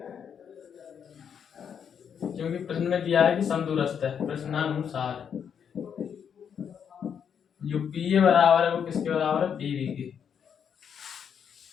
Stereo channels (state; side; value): quieter; right; 7.7 dB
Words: क्योंकि प्रश्न में दिया है कि समदूरस्थ है, प्रश्नानुसार जो पी ए बराबर है वो किसके बराबर है, पी बी के।